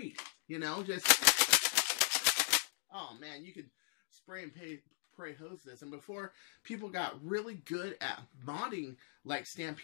Oh man, you could spray and pray hose this. And before people got really good at modding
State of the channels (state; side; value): silent; right; digital silence